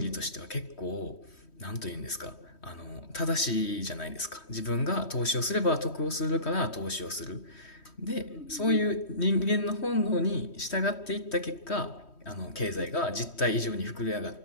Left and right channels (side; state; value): right; late; 3.1 ms